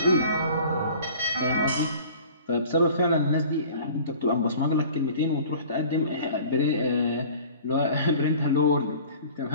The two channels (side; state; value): both; inverted; correlation -0.46